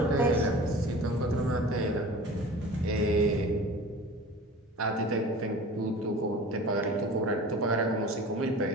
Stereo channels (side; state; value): both; normal; correlation 0.40